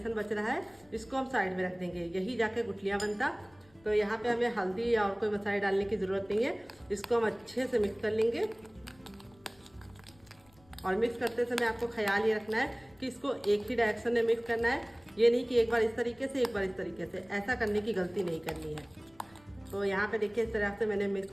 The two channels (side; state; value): left; noise; rumble, 29 dB below the sound